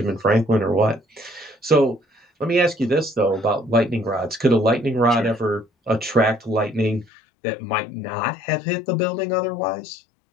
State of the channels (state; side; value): drops out; right; at 7.1 s